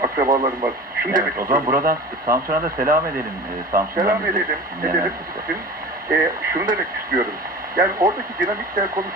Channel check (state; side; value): normal; both; correlation 0.35